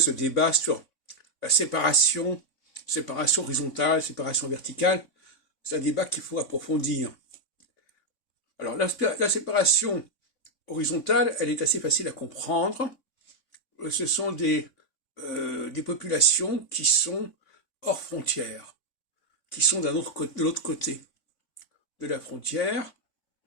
débat sur la séparation horizontale, séparation verticale, c'est un débat qu'il faut approfondir. Alors, la séparation horizontale, elle est assez facile à comprendre. Ce sont des populations qui sont hors frontières, qui sont de l'autre côté de la frontière,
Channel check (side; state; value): right; late; 3.6 ms